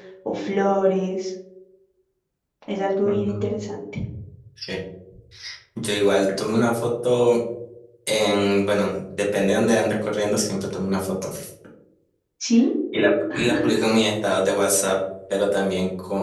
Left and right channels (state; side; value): identical; both; correlation 1.00